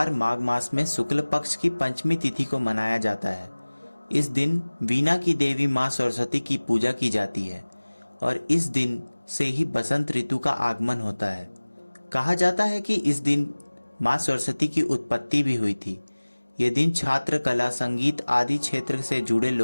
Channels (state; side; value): inverted; both; correlation -1.00